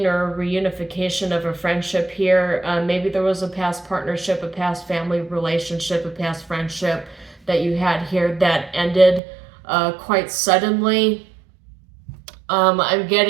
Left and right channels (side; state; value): left; drops out; at 9.2 s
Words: or a reunification of a friendship here. Maybe there was a past partnership, a past family relationship, a past friendship that you had here that ended quite suddenly. I'm